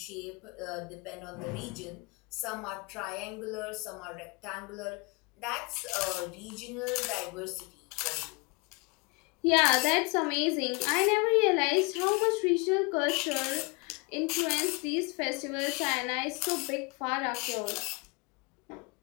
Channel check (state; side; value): quieter; right; 29.4 dB